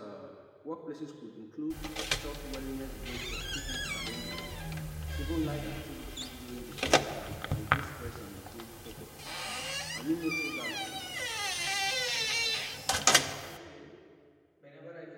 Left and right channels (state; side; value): identical; both; correlation 1.00